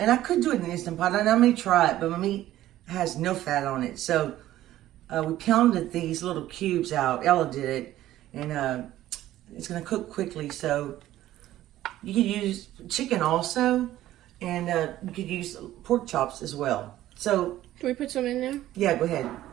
I could do it in an Instant Pot, and I may try it, but my meat has no fat on it. So we pounded these little cubes out. Ella did it, and it's going to cook quickly. So you could use chicken also, and you could use pork chops as well. So can we put some in there? Yeah, go ahead.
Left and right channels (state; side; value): quieter; left; 14.1 dB